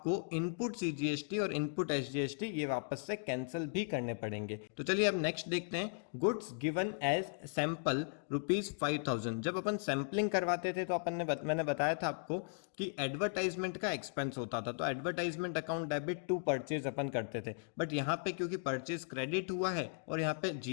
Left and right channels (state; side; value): silent; right; digital silence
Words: इनपुट सीजीएसटी और इनपुट एसजीएसटी ये वापस से कैंसिल भी करने पड़ेंगे। तो चलिए अब नेक्स्ट देखते हैं। Goods given as sample ₹5,000। जब अपन सैंपलिंग करवाते थे तो अपन ने मैंने बताया था आपको कि एडवर्टाइजमेंट का एक्सपेंस होता था, तो advertisement account debit to purchase अपन करते थे। बट यहाँ पे क्योंकि परचेज क्रेडिट हुआ है और यहाँ पे